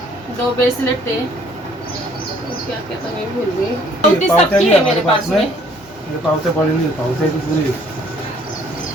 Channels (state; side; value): normal; both; correlation 0.61